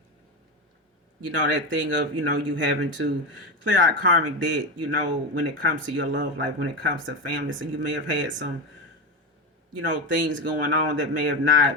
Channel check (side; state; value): both; normal; correlation 0.18